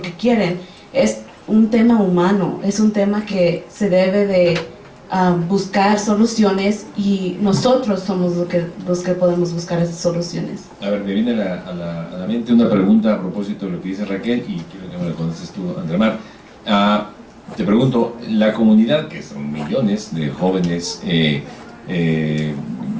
quieren, es un tema humano, es un tema que se debe de buscar soluciones, y nosotros somos los que podemos buscar esas soluciones. A ver, me viene a la mente una pregunta a propósito de lo que dice Raquel, y quiero que me la contestes tú, Andremar. Te pregunto, la comunidad, que son millones de jóvenes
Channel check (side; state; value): both; identical; correlation 1.00